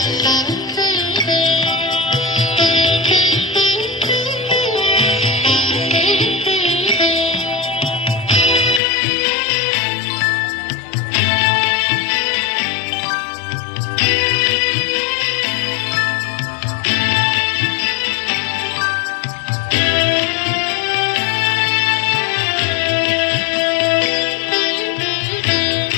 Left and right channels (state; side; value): drops out; right; at 8.8 s